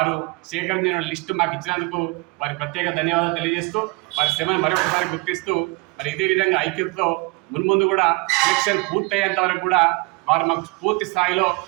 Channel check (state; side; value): quieter; left; 27.0 dB